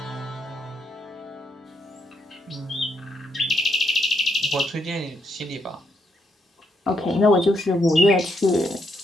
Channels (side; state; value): both; normal; correlation 0.78